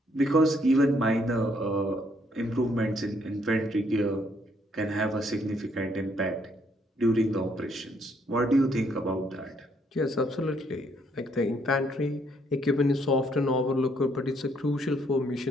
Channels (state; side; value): normal; both; correlation 0.70